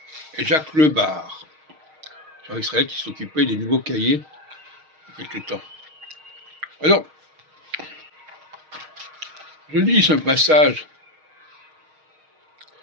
et Jacques Lebar. Gérard Israël qui s'occupait des nouveaux cahiers il y a quelque temps. Alors, je lis ce passage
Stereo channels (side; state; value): left; late; 6.4 ms